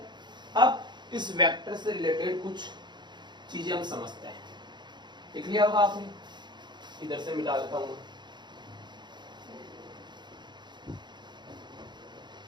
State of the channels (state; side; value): late; left; 0.21 ms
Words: अब इस वेक्टर से रिलेटेड कुछ चीजें हम समझते हैं। देख लिया होगा आपने, इधर से मिटा देता हूं।